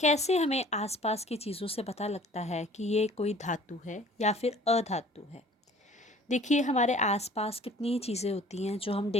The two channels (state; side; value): normal; both; correlation 0.50